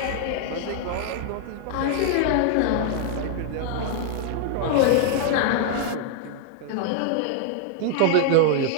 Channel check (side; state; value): both; different; correlation -0.01